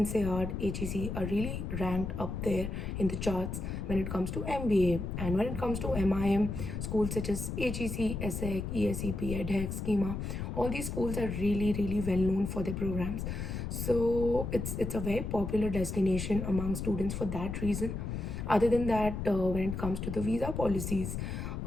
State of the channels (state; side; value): noise; left; rumble, 4 dB below the sound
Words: HEC are really ranked up there in the charts when it comes to MBA. And when it comes to MIM, schools such as HEC, ESSEC, ESEP, EDHEC, Schema, all these schools are really, really well known for their programs. So it's a very popular destination among students for that reason. Other than that, when it comes to the visa policies,